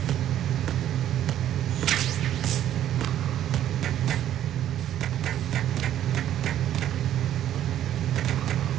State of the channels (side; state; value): left; quieter; 11.4 dB